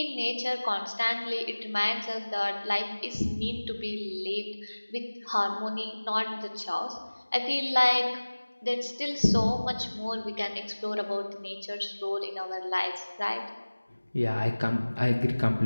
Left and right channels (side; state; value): both; inverted; correlation -1.00